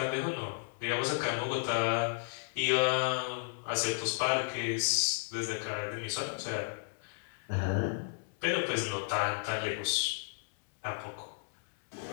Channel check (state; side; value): silent; right; 55 dB below the other